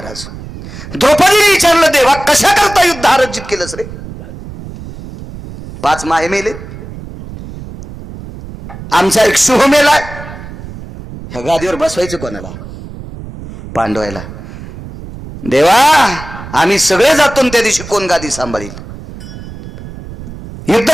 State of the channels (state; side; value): noise; right; rumble, 13 dB below the sound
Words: द्रौपदीने विचारलं देवा कशा करता युद्ध अर्जित केलंस रे. 5 माहे मेले आमचा एक शुभ मेलाय. ह्या गादीवर बसवायचं कोणाला पांडवायला. देवा आम्ही सगळे जातो त्या दिवशी कोण गादी सांभाळील. युद्ध